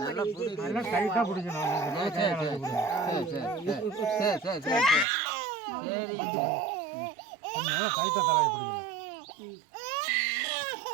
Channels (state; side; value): drops out; left; at 5.1 s